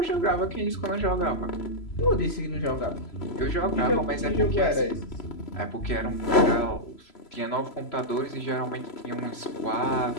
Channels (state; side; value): late; right; 3.0 ms